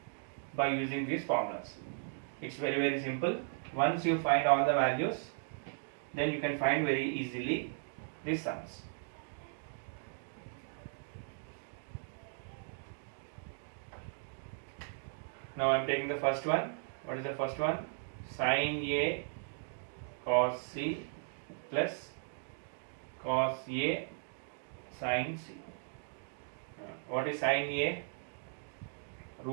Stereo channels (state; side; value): silent; left; digital silence